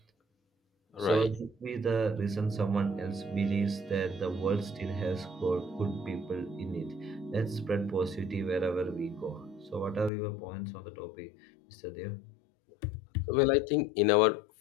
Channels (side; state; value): right; drops out; at 10.1 s